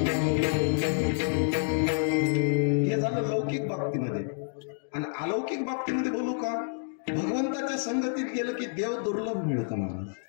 हे झालं लौकिक बाबतीमध्ये. आणि अलौकिक बाबतीमध्ये बोलू का. भगवंताच्या संगतीत गेलं की देव दुर्लभ मिळतं महाराज.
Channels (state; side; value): silent; right; digital silence